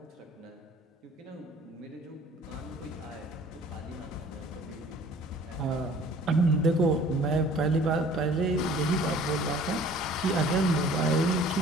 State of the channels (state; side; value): normal; both; correlation 0.50